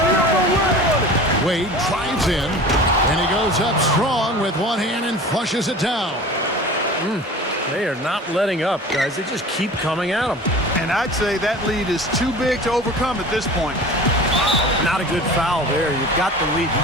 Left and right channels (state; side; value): normal; both; correlation 0.39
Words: Wade drives in, and he goes up strong with one hand and flushes it down. They are not letting up, guys. They just keep coming at them. And I'd say that lead is too big to overcome at this point. Not a good foul there. You've got the lead.